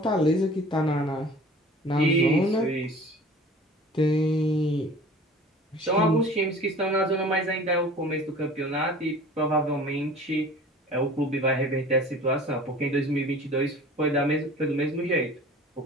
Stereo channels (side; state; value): both; normal; correlation 0.44